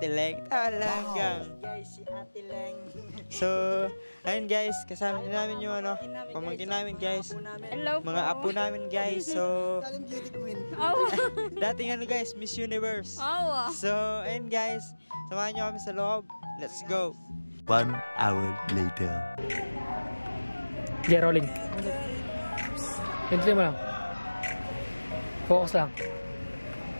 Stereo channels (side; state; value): both; inverted; correlation -1.00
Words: Leng. Talagang. Guys, si Ate Leng. So, ayun guys, kasama din namin yung pamangkin namin guys. Hello mga apo namin guys. So, Dating beauty queen. dating guys, Miss Universe. So, ayun guys, samahan nyo kami sa loob. Let's go. 1 hour later. Okay, rolling. Hintuin mo lang. Focus lang.